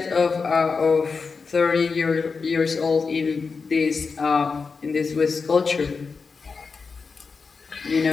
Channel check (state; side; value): quieter; right; 4.9 dB